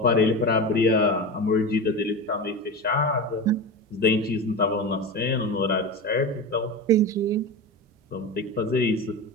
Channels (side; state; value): both; normal; correlation 0.24